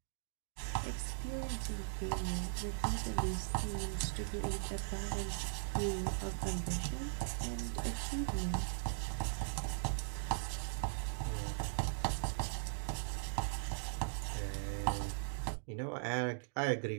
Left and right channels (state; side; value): silent; left; digital silence